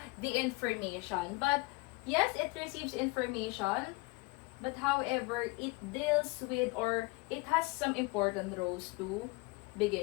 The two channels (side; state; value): right; quieter; 25.0 dB